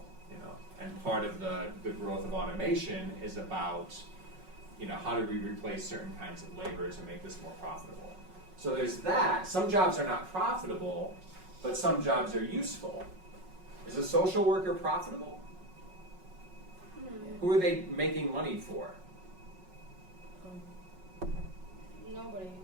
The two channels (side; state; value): left; late; 5.4 ms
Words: And part of the growth of automation is about how do we replace certain kinds of labor to make this more profitable? So there's that. Some jobs are not profitable, but some jobs are useful. Is a social worker profitable? Who are they making money for? Nobody.